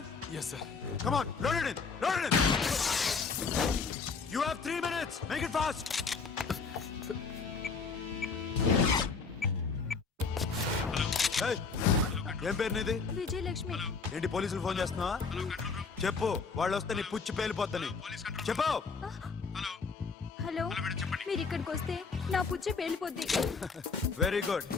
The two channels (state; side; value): quieter; right; 5.0 dB